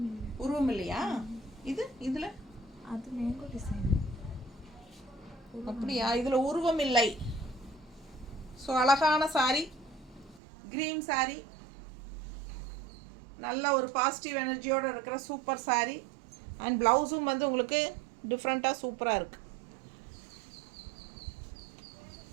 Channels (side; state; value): left; drops out; at 10.4 s